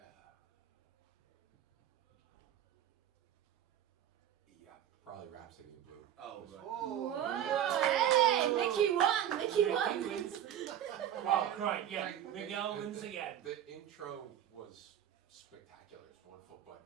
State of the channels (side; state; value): left; quieter; 10.6 dB